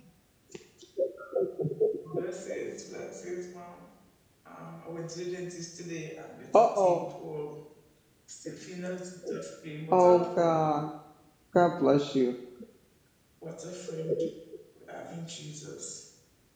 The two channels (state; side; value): identical; both; correlation 1.00